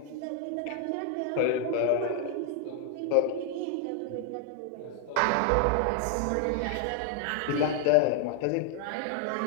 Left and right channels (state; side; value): different; both; correlation 0.00